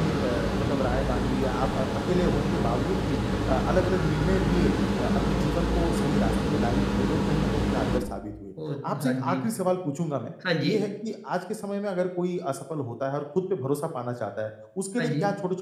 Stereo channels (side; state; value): both; identical; correlation 1.00